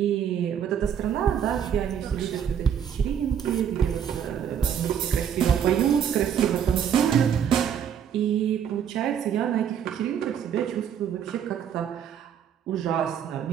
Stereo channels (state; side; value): quieter; left; 8.5 dB